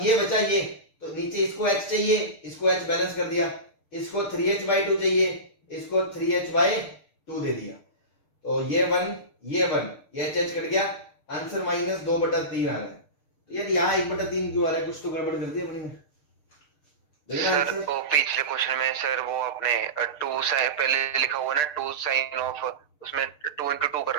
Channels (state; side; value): late; right; 6.7 ms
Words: ये बचा ये, तो नीचे इसको h चाहिए, इसको h बैलेंस कर दिया, इसको 3h/2 चाहिए, इसको 3h/2 दे दिया, तो ये 1, ये 1, ये h कट गया, आंसर -2/3 आ रहा है। तो यार यहाँ 1/3 क्यों आ रहा है? कुछ तो गड़बड़ कर दिया अपनी में। सर वो पिछले क्वेश्चन में सर वो आपने 2 साइन पहले लिखा हुआ ना, 2 साइन ऑफ, उसमें 2 into 2